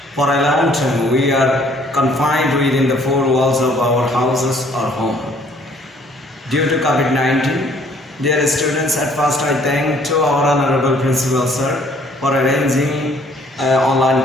for a long time we are confined within the four walls of our houses or home. Due to COVID-19, dear students, at first I thank to our Honorable Principal Sir for arranging online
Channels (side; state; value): both; normal; correlation 0.60